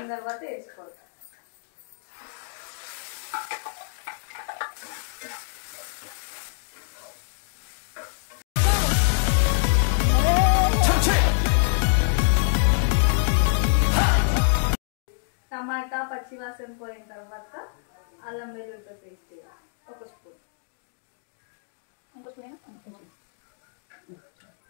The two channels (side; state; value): right; silent; digital silence